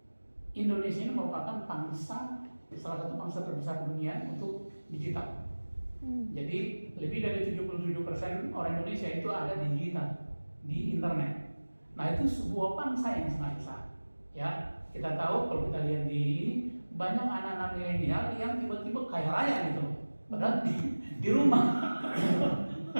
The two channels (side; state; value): both; inverted; correlation -1.00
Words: Indonesia ini merupakan salah satu bangsa terbesar dunia untuk digital. Jadi lebih dari 77% orang Indonesia itu ada di digital, di internet. Nah itu sebuah bangsa yang sangat besar. Ya kita tahu kalau kita lihat di banyak anak-anak milenial yang tiba-tiba kaya raya gitu, padahal di rumah.